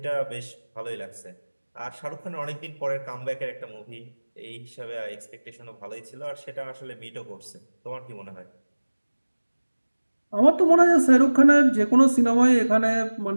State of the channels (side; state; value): both; inverted; correlation -1.00